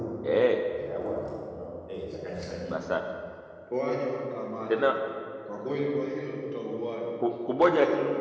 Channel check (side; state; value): both; identical; correlation 1.00